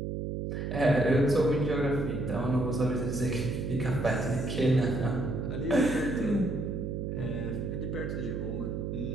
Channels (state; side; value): noise; right; hum, 3 dB below the sound